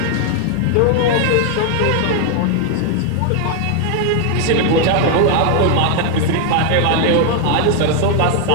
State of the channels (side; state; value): both; different; correlation 0.00